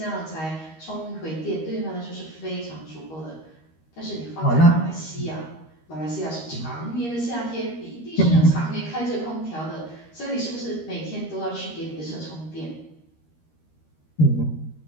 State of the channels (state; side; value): late; right; 13 ms